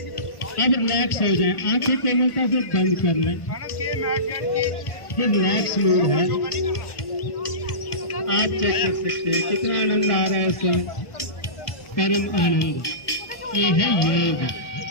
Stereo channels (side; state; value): right; late; 1.3 ms